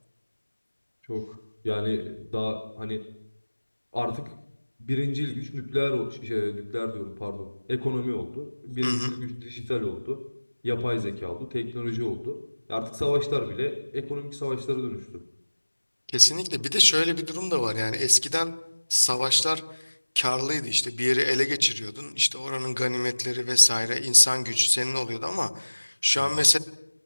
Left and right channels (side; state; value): both; inverted; correlation -1.00